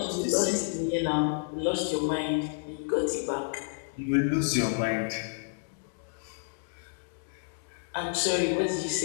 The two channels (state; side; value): silent; right; digital silence